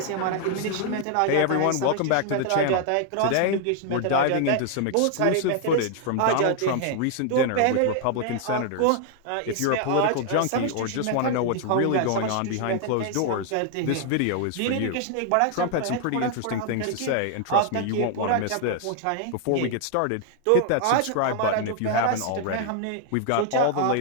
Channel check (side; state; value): both; different; correlation 0.00